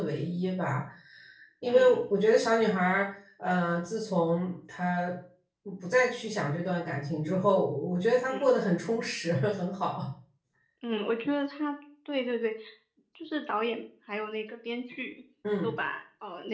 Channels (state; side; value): identical; both; correlation 1.00